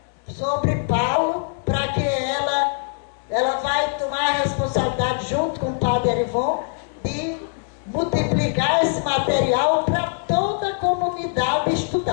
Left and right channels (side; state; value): right; silent; digital silence